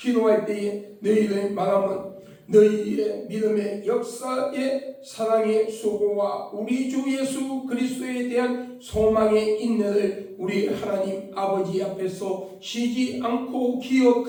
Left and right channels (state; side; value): identical; both; correlation 1.00